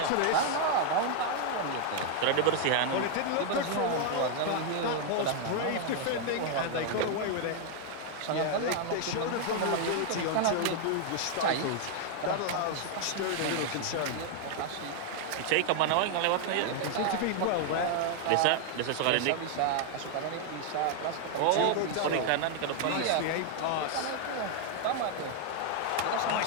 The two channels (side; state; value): both; different; correlation 0.00